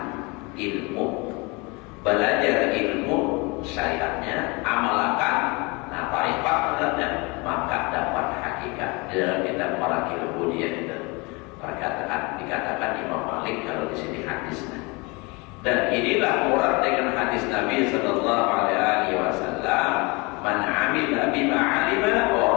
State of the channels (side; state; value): right; quieter; 27.3 dB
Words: ilmu, belajar ilmu syariatnya, amalkan, nah tarifatnya, maka dapat hakikat. Di dalam kitab Marakil Ubudiyah itu dikatakan Imam Malik kalau di sini hadisnya. Dan inilah murad dengan hadis Nabi sallallahu alaihi wasallam, man 'amila bima 'alima